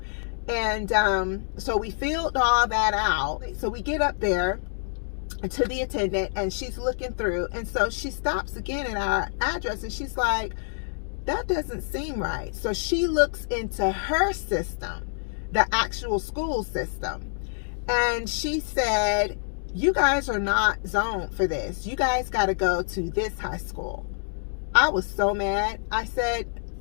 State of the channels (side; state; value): right; silent; digital silence